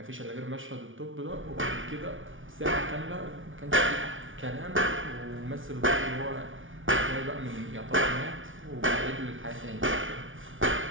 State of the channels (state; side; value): late; left; 0.57 ms